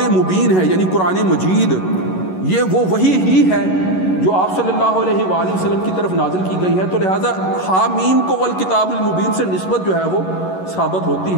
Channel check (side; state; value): right; late; 11 ms